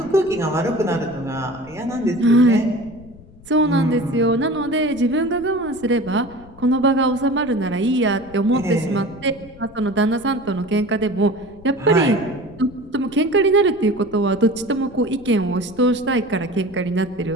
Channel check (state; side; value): noise; left; rumble, 22 dB below the sound